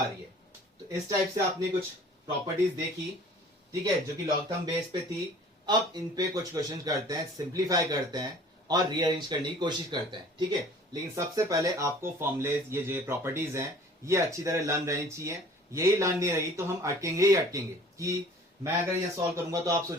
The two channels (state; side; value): normal; both; correlation 0.49